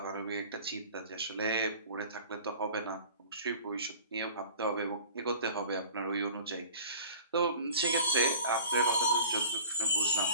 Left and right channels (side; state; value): both; inverted; correlation -0.43